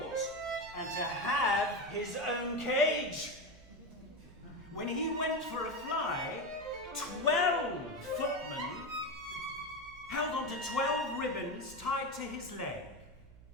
and to have his own cage. When he went for a fly, 12 footmen held onto 12 ribbons tied to his leg.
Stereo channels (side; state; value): right; noise; hum, 22 dB below the sound